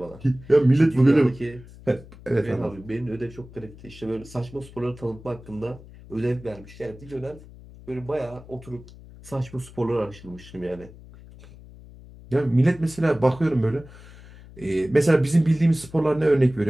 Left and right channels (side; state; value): left; noise; hum, 19 dB below the sound